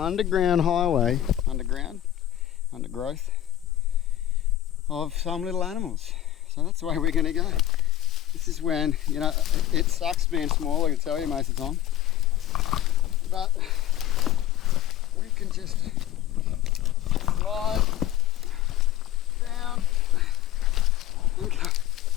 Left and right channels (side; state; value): right; quieter; 12.6 dB